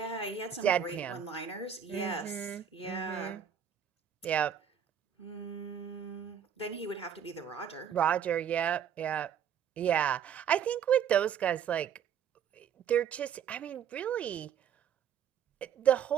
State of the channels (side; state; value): left; quieter; 8.5 dB